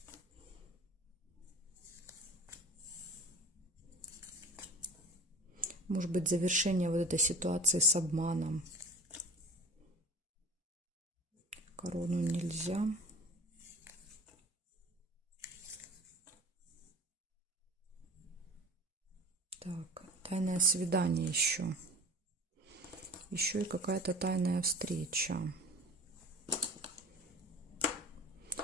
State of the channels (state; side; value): normal; both; correlation 0.40